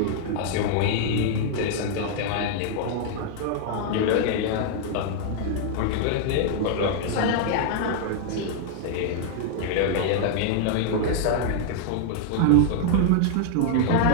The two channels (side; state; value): both; different; correlation 0.00